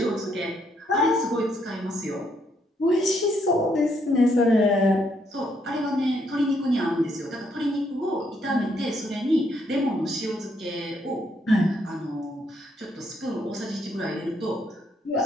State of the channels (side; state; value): both; normal; correlation 0.73